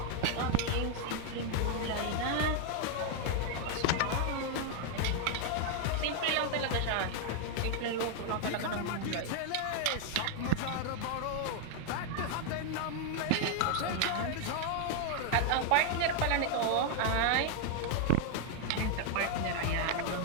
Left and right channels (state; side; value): different; both; correlation 0.00